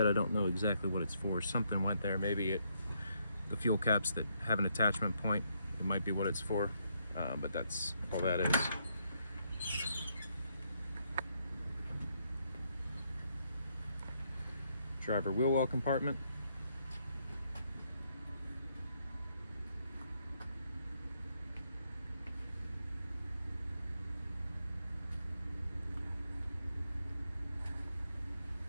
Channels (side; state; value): both; inverted; correlation -0.75